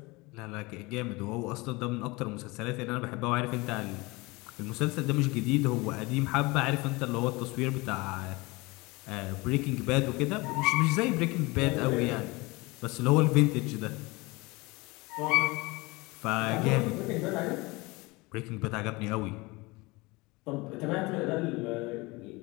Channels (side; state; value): right; quieter; 23.9 dB